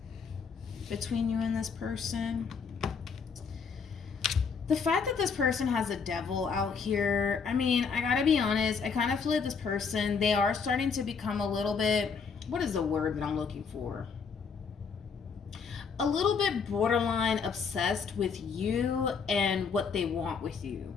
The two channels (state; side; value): quieter; right; 5.7 dB